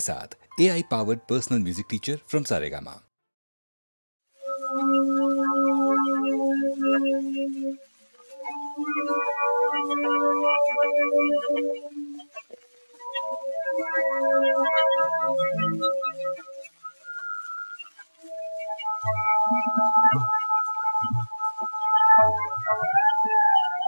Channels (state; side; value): inverted; both; correlation -1.00